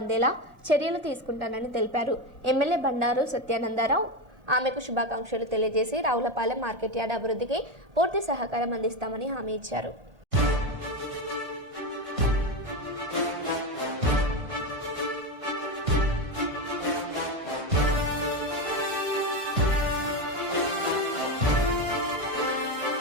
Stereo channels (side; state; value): left; late; 1.5 ms